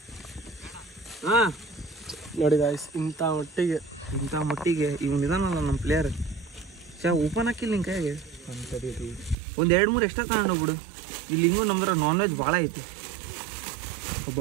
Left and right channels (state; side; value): drops out; left; at 9.3 s